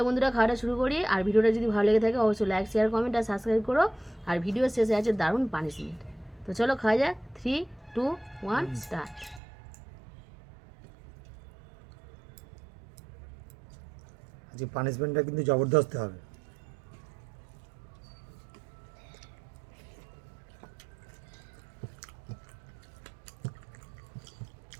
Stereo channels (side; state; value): left; drops out; at 9.4 s